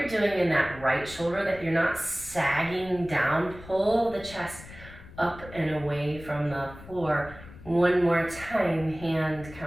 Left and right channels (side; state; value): left; noise; rumble, 17 dB below the sound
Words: doing in that right shoulder, that you're not sagging down. Pull the chest up and away from the floor. One more time, hand